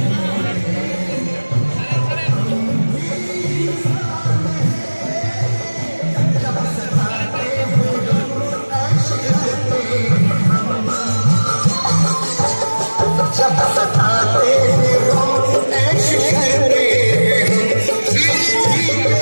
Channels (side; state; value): both; inverted; correlation -1.00